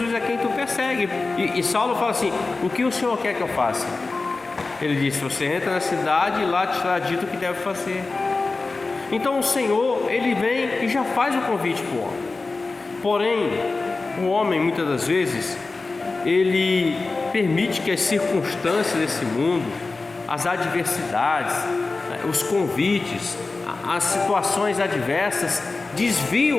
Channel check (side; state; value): right; quieter; 3.7 dB